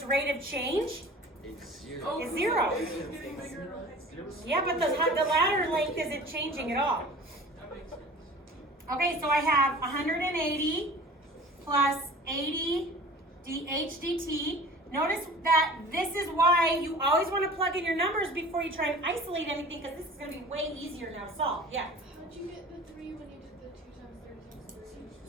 rate of change? It's 0. Oh, It's 0. It's getting bigger and height. Yeah, but the ladder length isn't changing at all. That makes sense. Okay, so I have 180 plus 80 dh dt. Notice that this is why you always want to plug in your numbers before you try and isolate anything, because this is going to be way easier now to solve. Yeah. How'd you get the 3 when you did the 2 times 3 times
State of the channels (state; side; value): normal; both; correlation 0.42